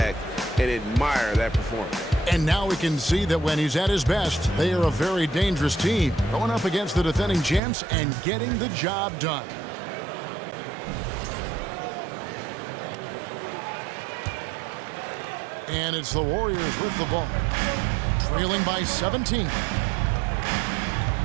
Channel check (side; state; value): left; drops out; at 7.6 s